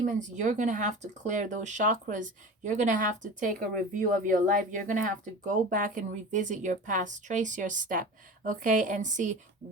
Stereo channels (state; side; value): normal; both; correlation 0.34